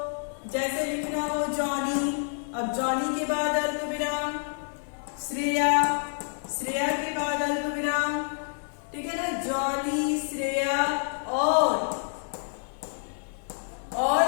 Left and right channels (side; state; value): right; silent; digital silence